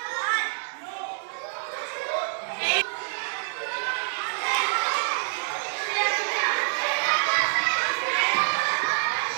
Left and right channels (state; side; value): silent; left; 60 dB below the other